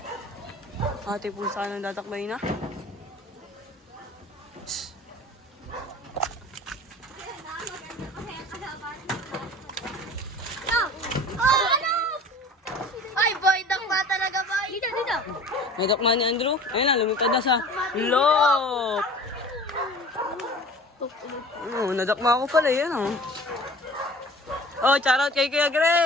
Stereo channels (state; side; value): normal; both; correlation 0.43